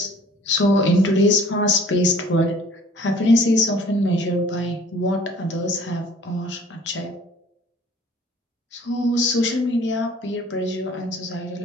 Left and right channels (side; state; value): both; normal; correlation 0.53